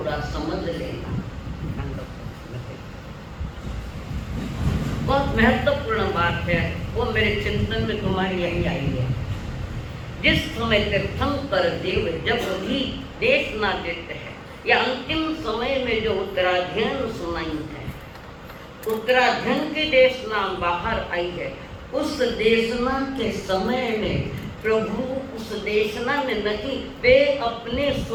समझ लेना, बहुत महत्वपूर्ण बात है, वो मेरे चिंतन में तुम्हारी यही आई है। जिस समय तीर्थंकर देव जब भी देशना देते हैं या अंतिम समय में जो उत्तराध्ययन सुनाई है, उत्तराध्ययन की देशना बाहर आई है, उस देशना के समय में प्रभु उस देशना में नहीं, वे अपने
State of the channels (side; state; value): both; identical; correlation 1.00